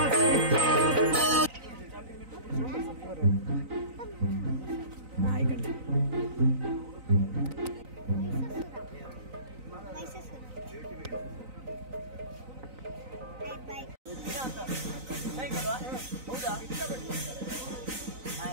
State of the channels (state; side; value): late; left; 3.9 ms